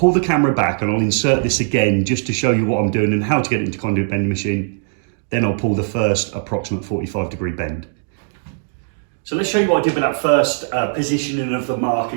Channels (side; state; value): left; silent; digital silence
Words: the camera back and I'll insert this again just to show you what I'm doing and how to get it into conduit bending machine. Then I'll pull the first approximate 45-degree bend. So let's show you what I did with that first positioning of the mark